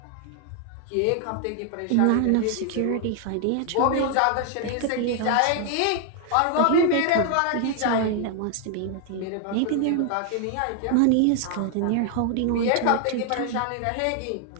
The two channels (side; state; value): both; different; correlation 0.00